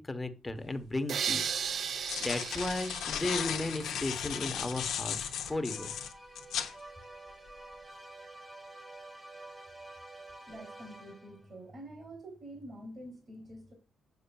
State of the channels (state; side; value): normal; both; correlation 0.76